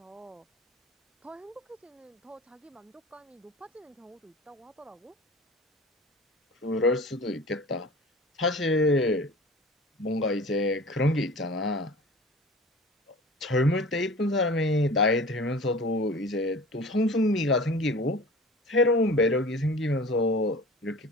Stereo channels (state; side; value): normal; both; correlation 0.40